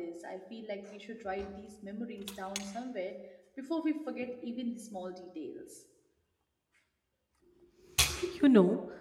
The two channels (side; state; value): both; identical; correlation 1.00